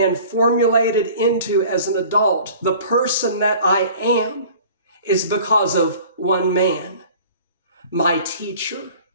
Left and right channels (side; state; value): both; inverted; correlation -0.46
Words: formulated into as an adult, the person that I am, is because of one man, my teacher,